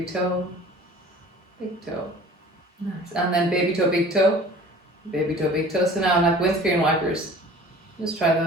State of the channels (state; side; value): normal; both; correlation 0.46